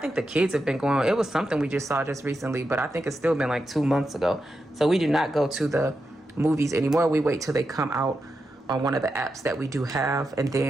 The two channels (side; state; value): both; normal; correlation 0.88